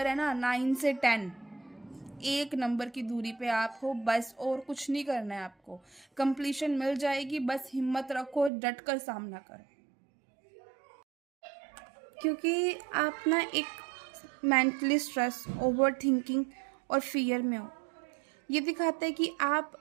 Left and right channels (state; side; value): drops out; left; at 8.5 s